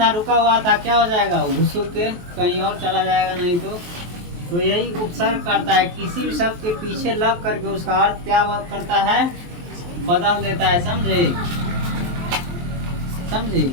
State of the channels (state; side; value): late; left; 23 ms